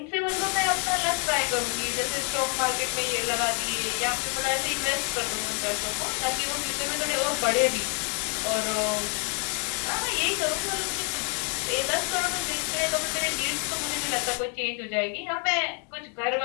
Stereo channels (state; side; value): quieter; right; 39.5 dB